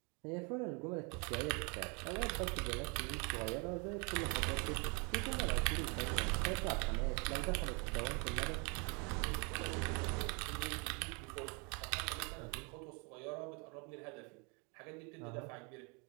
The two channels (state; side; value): quieter; left; 32.9 dB